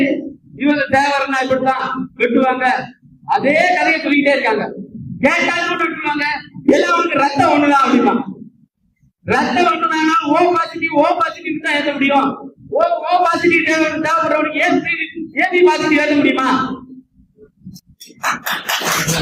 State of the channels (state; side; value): identical; both; correlation 1.00